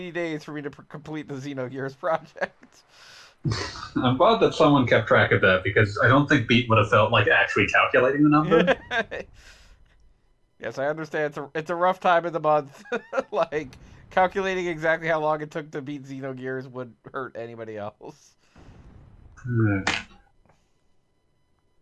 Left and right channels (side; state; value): both; identical; correlation 1.00